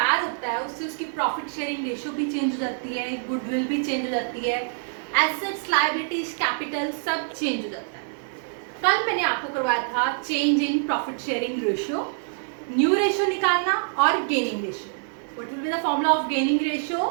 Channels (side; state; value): left; silent; 61 dB below the other